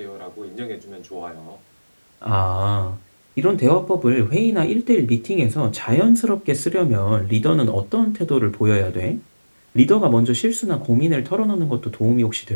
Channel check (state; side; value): inverted; both; correlation -1.00